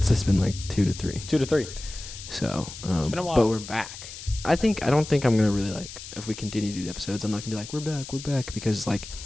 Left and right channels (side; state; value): left; noise; hiss, 12 dB below the sound